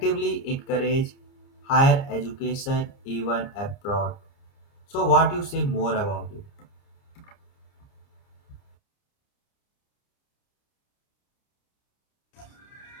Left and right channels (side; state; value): right; late; 29 ms